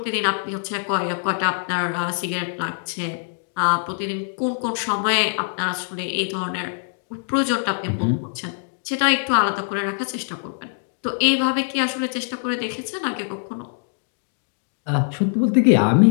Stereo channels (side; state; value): right; silent; digital silence